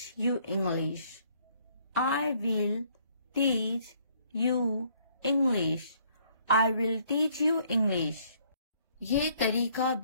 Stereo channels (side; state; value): both; inverted; correlation -0.65